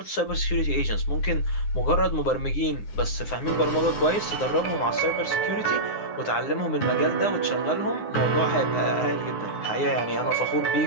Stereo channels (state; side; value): late; right; 9.7 ms